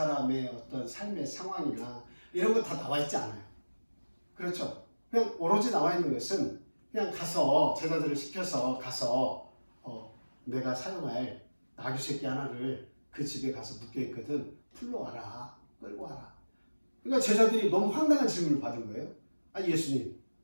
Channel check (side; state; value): both; inverted; correlation -1.00